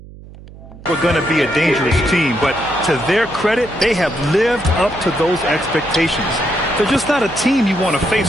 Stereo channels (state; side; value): noise; right; hum, 18 dB below the sound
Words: we're going to be a dangerous team, but to their credit, they have lived up to those expectations. They're just not a team you want to